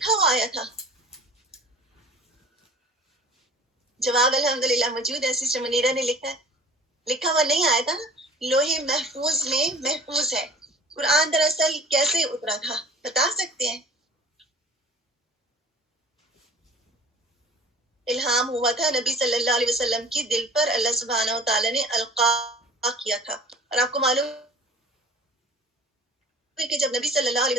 ہوا آیا تھا؟ جواب الحمدللہ موجود ہے. سسٹر منیرہ نے لکھا ہے. لکھا ہوا نہیں آیا تھا، لوہے محفوظ میں محفوظ ہے. قرآن دراصل کیسے اترا تھا بتا سکتے ہیں؟ الہام ہوا تھا نبی صلی اللہ علیہ وسلم کی دل پر، اللہ سبحانہ وتعالی نے القا کیا تھا. اور آپ کو معلوم ہے کہ جب نبی صلی اللہ علیہ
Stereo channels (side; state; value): both; normal; correlation 0.44